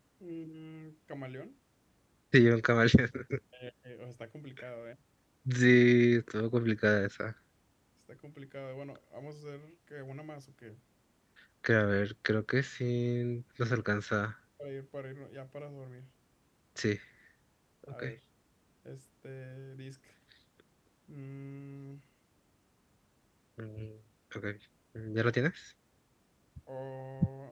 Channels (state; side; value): identical; both; correlation 1.00